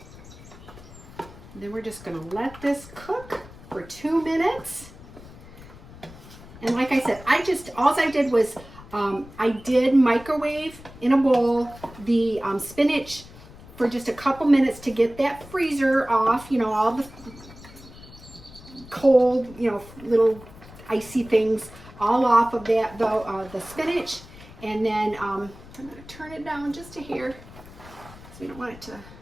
then we're just going to let this cook for 2 minutes. And like I said, all I did was I did microwave in a bowl the spinach for just a couple minutes to get that freezer off, you know, all the cold, you know, little icy things all off of that, the spinach. And then I'm going to turn it down just a hair, so we don't want it to,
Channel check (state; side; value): noise; left; rumble, 18 dB below the sound